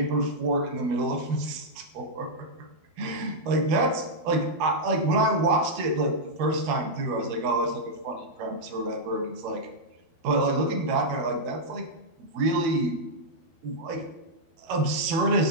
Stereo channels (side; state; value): left; late; 12 ms